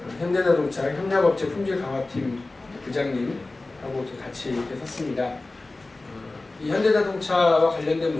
현대자동차 협력업체 품질 강화팀 부장님하고 같이 이렇게 섰습니다. 이 현대자동차와 관련된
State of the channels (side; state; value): right; quieter; 3.2 dB